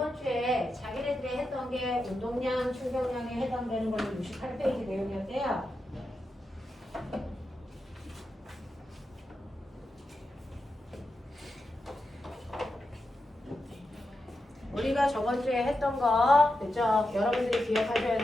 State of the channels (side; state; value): both; normal; correlation 0.88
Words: 주에 자기네들이 했던 게 운동량, 충격량에 해당되는 걸로 68페이지 내용이었대요. 우리가 저번 주에 했던 거, 그죠? 여러분들이 기억하셔야